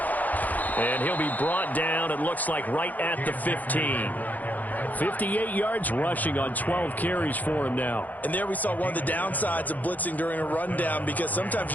And he'll be brought down, it looks like, right at the 15. 58 yards rushing on 12 carries for him now. And there we saw one of the downsides of blitzing during a rundown, because sometimes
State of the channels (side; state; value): right; late; 0.081 ms